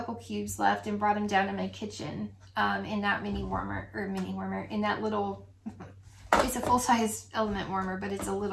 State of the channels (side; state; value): both; identical; correlation 1.00